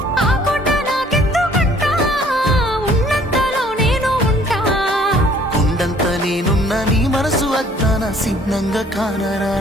ఆ కోట నాకెందుకంట ఉన్నంతలో నేను ఉంటా కొండంత నేనున్న నీ మనసు అద్దాన సిన్నంగా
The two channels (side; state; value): both; normal; correlation 0.57